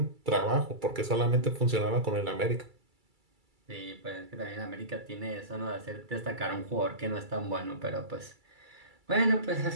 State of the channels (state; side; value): late; left; 2.3 ms